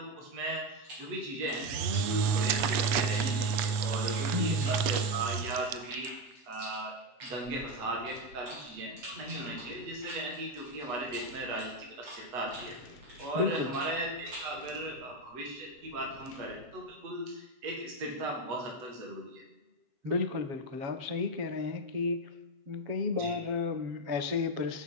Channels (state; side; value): late; left; 8.3 ms